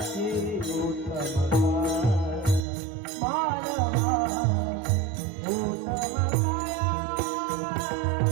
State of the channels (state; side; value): drops out; left; at 2.7 s